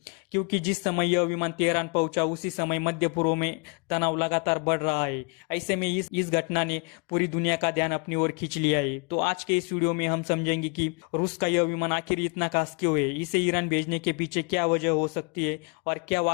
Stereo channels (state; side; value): quieter; right; 33.4 dB